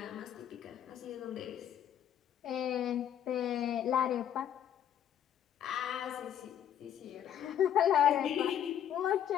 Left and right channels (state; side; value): quieter; right; 10.0 dB